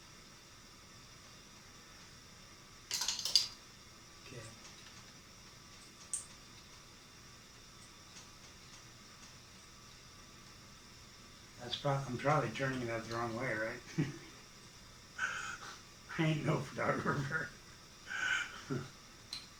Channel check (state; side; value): noise; right; hum, 24 dB below the sound